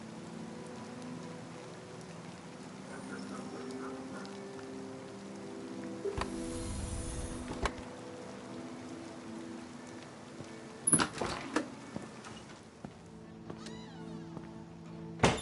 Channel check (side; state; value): both; identical; correlation 1.00